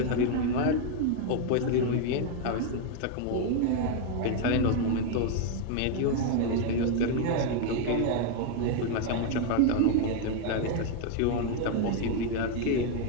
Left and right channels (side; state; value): both; different; correlation 0.01